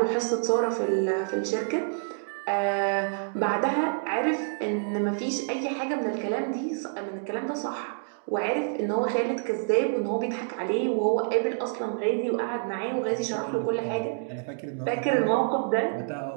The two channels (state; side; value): silent; left; digital silence